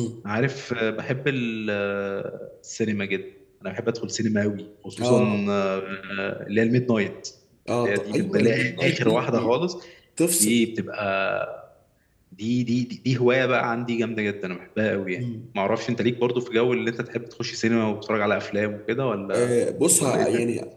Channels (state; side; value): identical; both; correlation 1.00